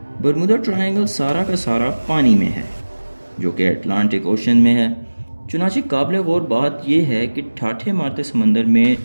برمودا ٹرائنگل سارا کا سارا پانی میں ہے، جو کہ اٹلانٹک اوشن میں ہے۔ چنانچہ قابل غور بات یہ ہے کہ ٹھاٹھے مارتے سمندر میں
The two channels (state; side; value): inverted; both; correlation -1.00